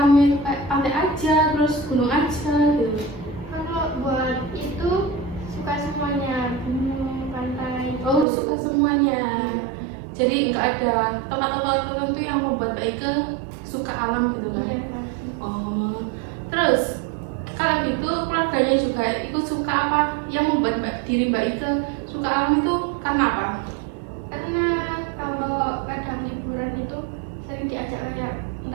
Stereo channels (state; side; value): drops out; left; at 8.2 s